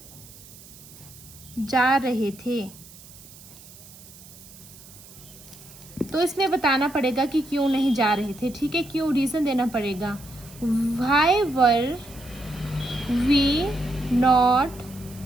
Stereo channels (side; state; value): right; noise; hiss, 20 dB below the sound